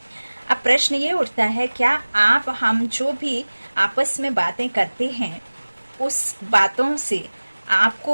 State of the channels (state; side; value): inverted; both; correlation -1.00